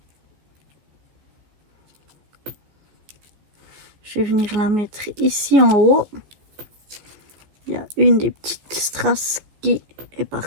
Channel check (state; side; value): late; left; 14 ms